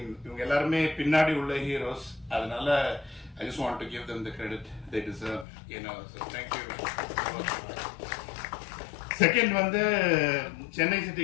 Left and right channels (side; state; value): right; drops out; at 5.5 s